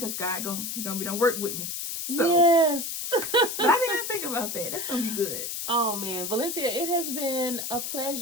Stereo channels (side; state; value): left; noise; hiss, 4 dB below the sound